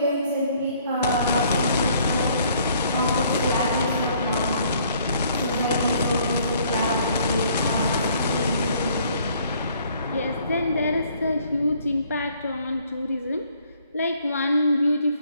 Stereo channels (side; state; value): both; inverted; correlation -0.62